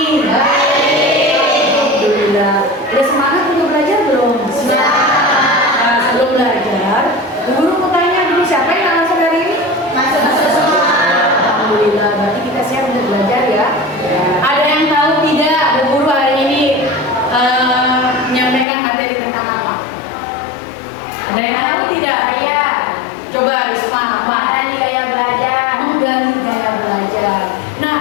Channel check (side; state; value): right; drops out; at 18.7 s